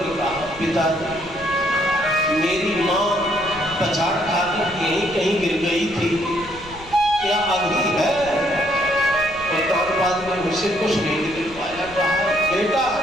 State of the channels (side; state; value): left; noise; rumble, 19 dB below the sound